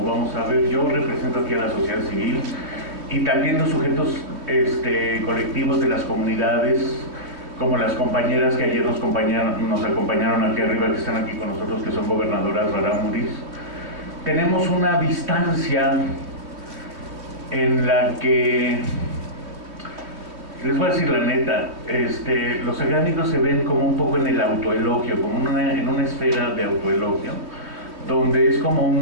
vamos a ver. Yo represento aquí a la sociedad civil y también los sujetos colectivos de las comunidades, como las compañeras que ayer nos acompañaron aquí arriba, que están aquí con nosotros, que son gobernadoras rarámuris. Tenemos una distancia en la que, les voy a decir la neta, los académicos se ven como un poco en el autoelogio, como en una esfera de autoelogio, donde es como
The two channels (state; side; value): late; left; 3.1 ms